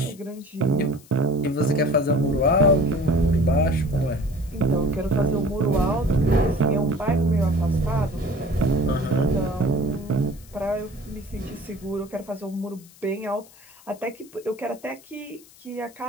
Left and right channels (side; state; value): left; noise; hiss, 24 dB below the sound